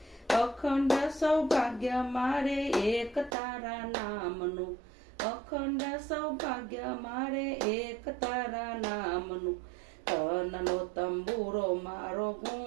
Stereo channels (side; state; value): left; drops out; at 3.3 s